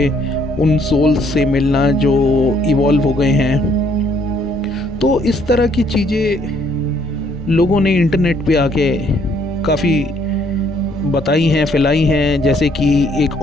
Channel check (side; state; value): both; normal; correlation 0.66